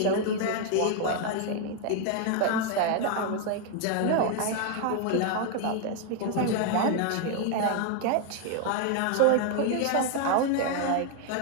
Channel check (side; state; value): both; different; correlation 0.00